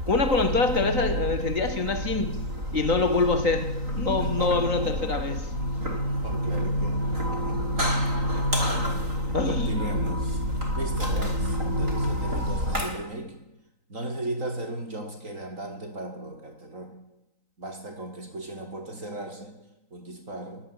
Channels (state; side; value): late; left; 3.9 ms